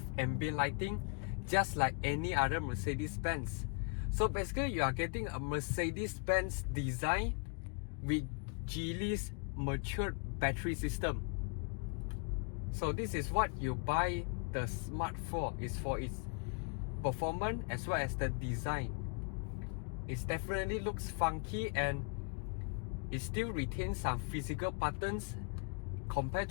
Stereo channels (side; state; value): right; quieter; 39.3 dB